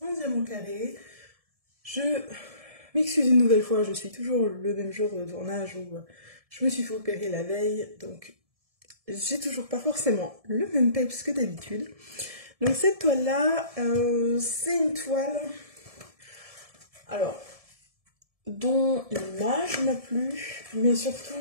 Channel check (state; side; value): late; left; 1.7 ms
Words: en diamant carré. Je m'excuse une nouvelle fois, je suis toujours le même jour de tournage où je me suis fait opérer la veille, donc j'ai toujours pas forcément le même peps que d'habitude. Donc cette toile là, c'est une toile alors dont l'image m'a plu, mais